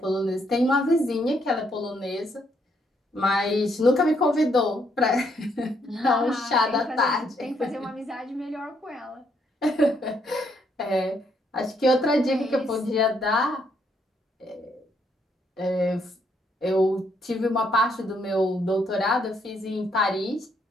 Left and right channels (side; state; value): both; normal; correlation 0.73